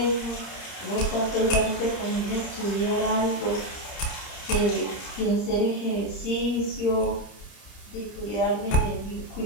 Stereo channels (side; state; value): right; late; 30 ms